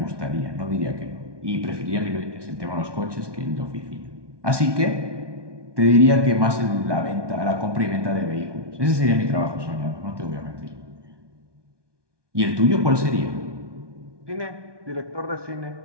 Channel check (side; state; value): left; late; 1.2 ms